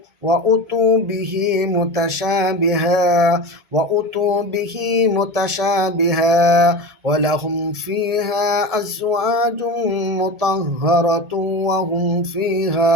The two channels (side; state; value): left; late; 1.7 ms